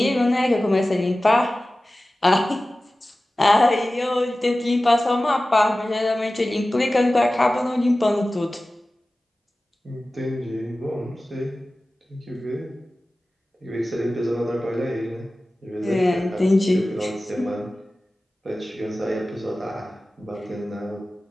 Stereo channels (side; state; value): both; normal; correlation 0.96